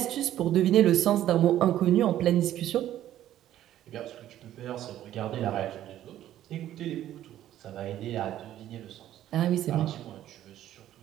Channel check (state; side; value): quieter; left; 12.5 dB